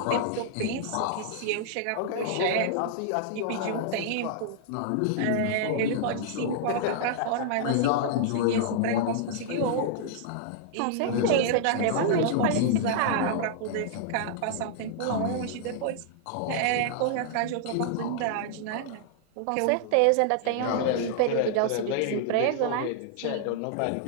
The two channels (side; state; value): both; different; correlation -0.01